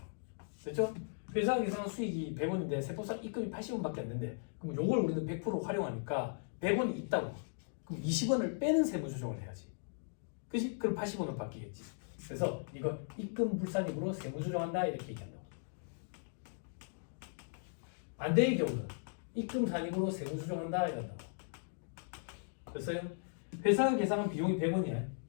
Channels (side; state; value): right; silent; digital silence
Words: 됐죠? 회사 계산한 수익이 100원인데 세법상 입금이 80원밖에 안 된대. 그럼 요걸 우리는 100% 활용하니까 100원이 있다고. 그럼 20원을 빼는 세무조정을 해야지. 그치? 그럼 80원으로 바뀌겠지. 그래서 이거 입금 불산입으로 세무조정한다 이렇게 얘기한다고. 반대의 경우는 입금 산입으로 세무조정한다 이런다고. 됐어요? 회사가 계산한 비용이 100원이야.